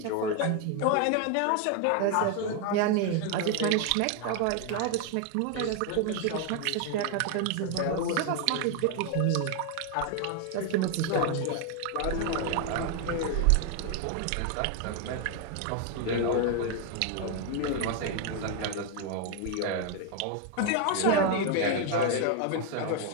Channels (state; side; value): different; both; correlation 0.01